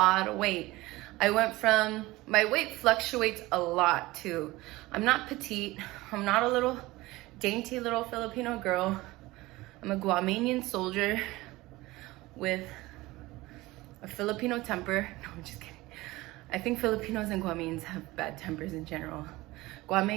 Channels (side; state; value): left; quieter; 19.7 dB